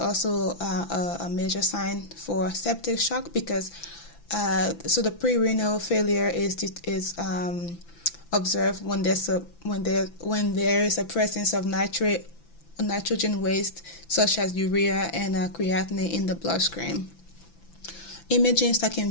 a major sign for septic shock, because so the pre-renal failure is observed when there is a presence of nitrogen waste such as urea and creatinine in the bloodstream. Imaging that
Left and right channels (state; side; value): late; right; 5.9 ms